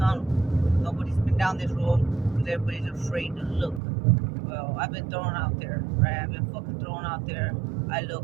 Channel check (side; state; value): left; drops out; at 3.8 s